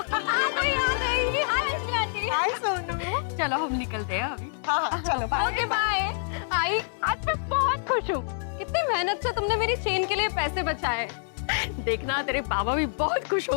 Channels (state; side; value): silent; right; 60 dB below the other